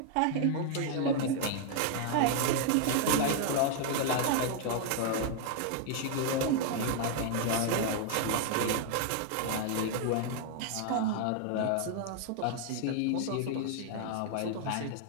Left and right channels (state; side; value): different; both; correlation 0.00